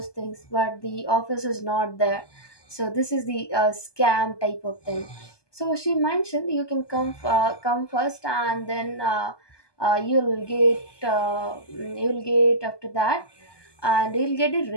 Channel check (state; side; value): late; right; 1.2 ms